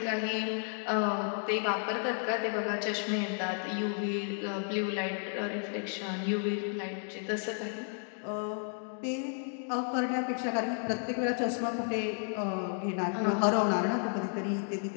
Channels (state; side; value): silent; right; 56 dB below the other